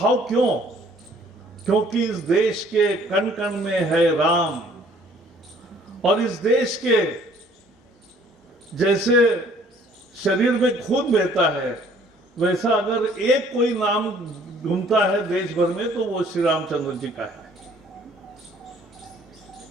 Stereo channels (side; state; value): both; normal; correlation 0.58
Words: क्यों? क्योंकि इस देश के कण कण में है राम। और इस देश के जैसे शरीर में खून बहता है, वैसा अगर एक कोई नाम घूमता है देश भर में तो वो श्री रामचंद्र जी का है।